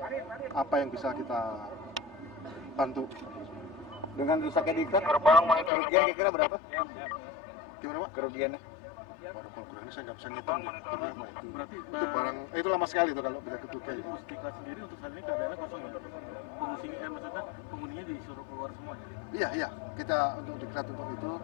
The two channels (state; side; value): drops out; right; at 5.7 s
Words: apa yang bisa kita bantu. Dengan rusaknya diklat, kerugian kira-kira berapa? Gimana Pak? Kerugiannya? Baru kalau ini saya nggak bisa ngitung ya. Berarti Itu barang, itu lama sekali itu kalau bisa ketutup. Berarti Pusdiklat sendiri untuk saat ini keadaannya kosong ya? Pengungsinya, maksudnya penghuninya disuruh keluar semua ya? Iya, kita untuk diklat untuk itu